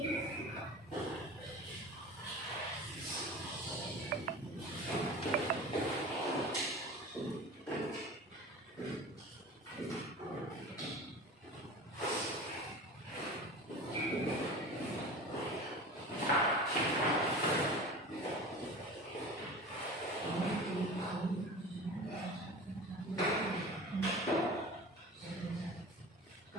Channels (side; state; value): both; normal; correlation 0.35